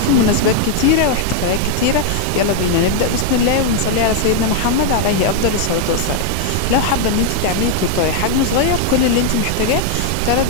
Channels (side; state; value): both; different; correlation 0.00